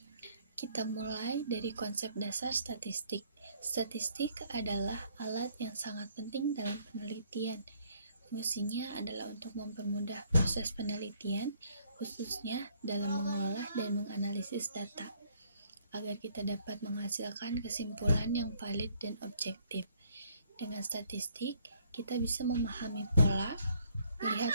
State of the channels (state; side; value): inverted; both; correlation -0.65